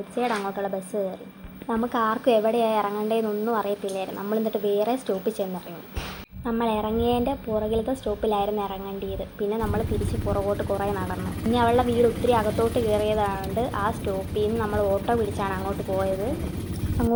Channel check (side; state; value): both; identical; correlation 1.00